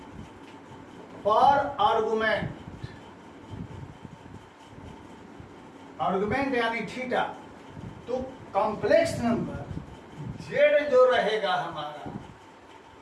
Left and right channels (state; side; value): identical; both; correlation 1.00